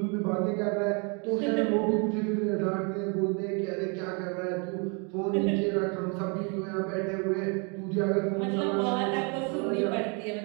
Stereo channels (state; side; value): quieter; left; 34.1 dB